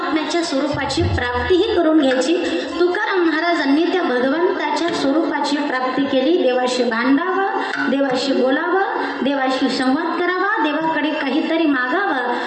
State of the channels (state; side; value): identical; both; correlation 1.00